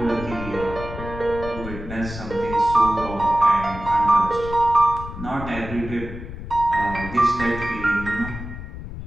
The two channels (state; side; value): noise; left; rumble, 10 dB below the sound